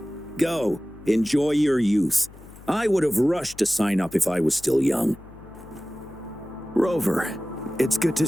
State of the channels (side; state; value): left; noise; hum, 20 dB below the sound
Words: Go. Enjoy your youth. I would have rushed to sign up if I was still young. Rover, it's good to